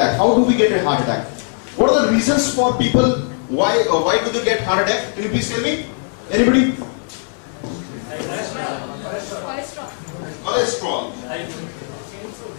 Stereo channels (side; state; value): right; silent; 58 dB below the other